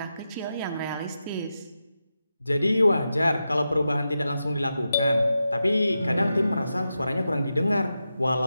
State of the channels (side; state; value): both; inverted; correlation -0.89